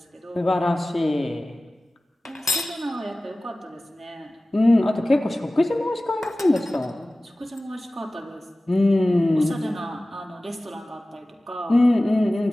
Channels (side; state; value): both; normal; correlation 0.97